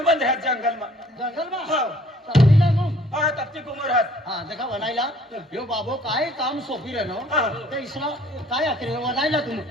मध्ये आहेत जंगल मा जंगल में हो चाललीला मग हा तपती कुमरात हा देखा बनायला यो बाबो काय काम सोपी रे नो हा. ते इसला काय आखरे बनायला तुम्ही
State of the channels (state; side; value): normal; both; correlation 0.57